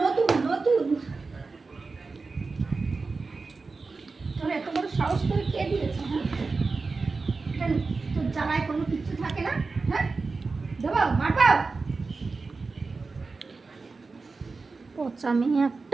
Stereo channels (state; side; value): quieter; left; 4.1 dB